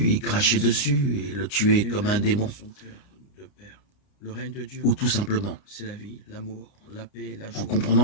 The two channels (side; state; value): right; late; 29 ms